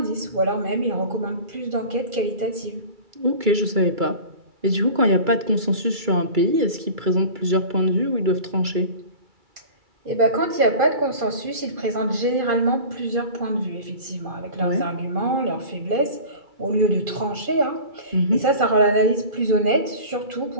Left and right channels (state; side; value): late; left; 2.3 ms